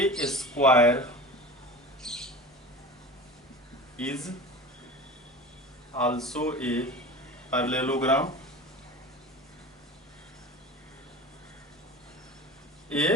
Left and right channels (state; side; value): normal; both; correlation 0.34